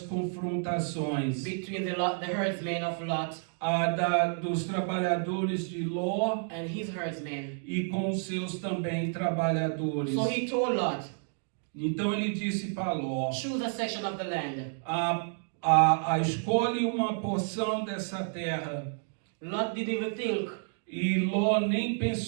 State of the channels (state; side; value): silent; left; 58 dB below the other